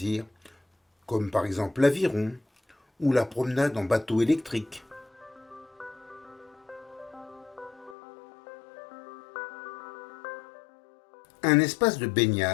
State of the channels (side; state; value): right; drops out; at 8.0 s